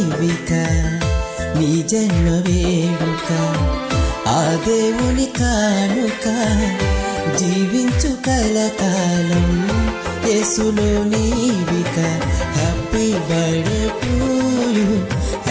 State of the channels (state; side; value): identical; both; correlation 1.00